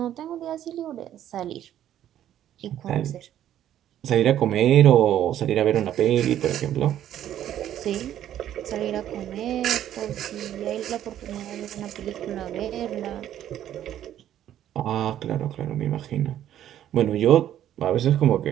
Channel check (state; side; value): quieter; left; 11.4 dB